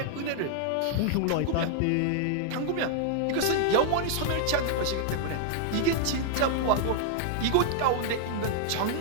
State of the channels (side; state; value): both; different; correlation 0.00